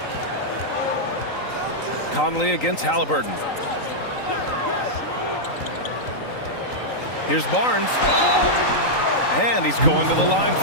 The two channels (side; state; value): right; late; 3.9 ms